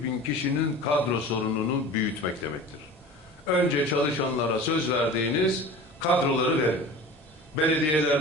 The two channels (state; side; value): normal; both; correlation 0.37